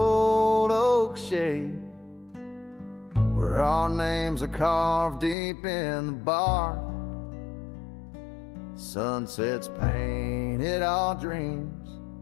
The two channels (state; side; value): drops out; right; at 5.4 s